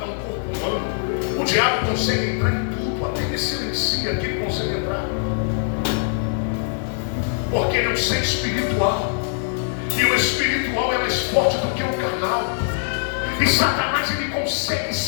um corpo humano. O diabo consegue entrar em tudo, até que silencia que ele consegue entrar. Porque ele é um ser espiritual. E o espiritual é mais forte do que o carnal. E Satanás, ele consegue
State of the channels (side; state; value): right; silent; digital silence